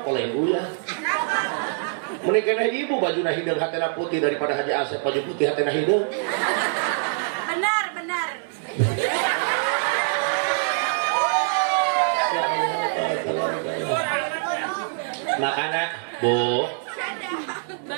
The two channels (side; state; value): left; silent; digital silence